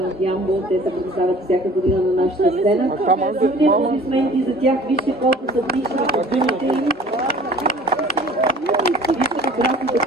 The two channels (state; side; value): normal; both; correlation 0.48